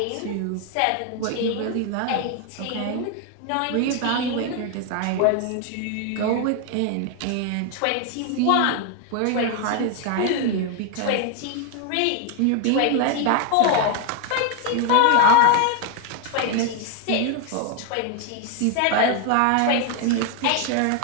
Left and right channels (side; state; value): both; different; correlation 0.01